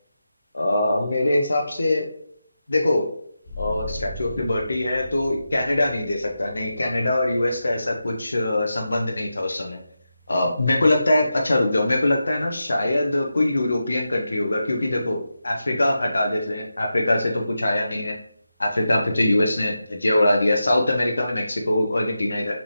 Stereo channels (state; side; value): inverted; both; correlation -0.90